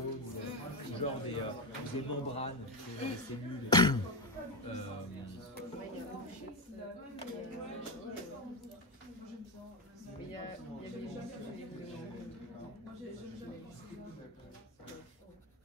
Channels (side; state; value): both; normal; correlation 0.12